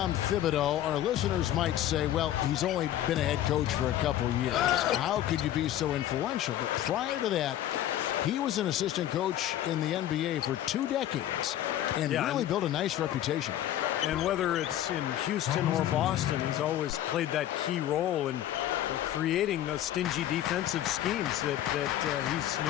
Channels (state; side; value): quieter; right; 12.4 dB